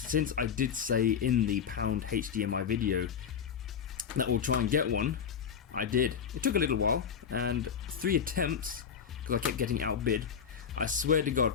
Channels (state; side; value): quieter; right; 7.3 dB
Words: I did say in the Pound HDMI video that we'll try and get one, I did. It took a little while, and 3 attempts, because I kept getting outbid. I swear to God,